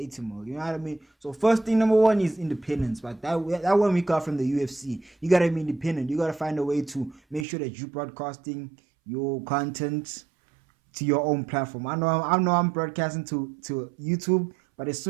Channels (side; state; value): left; drops out; at 7.5 s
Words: mil, you know what I mean? So first thing, number one, is independence. But that one we got from the UFC. You gotta be independent. You gotta find a way to make sure that you're broadcasting your content to your own platform. I know I'm broadcasting to YouTube, but as